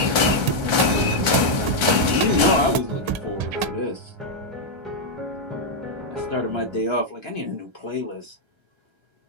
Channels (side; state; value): left; late; 1.3 ms